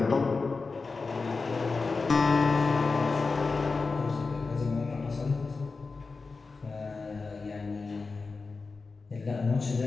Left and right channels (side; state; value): right; quieter; 4.2 dB